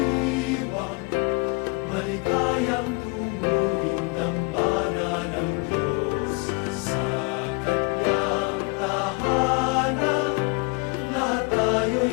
maligayang tunguhin dambana ng Diyos sa kanyang tahanan. Lahat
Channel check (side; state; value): right; quieter; 29.6 dB